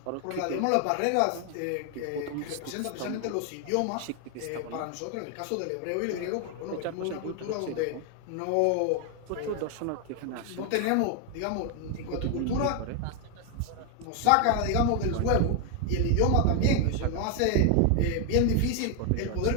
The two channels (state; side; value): different; both; correlation 0.01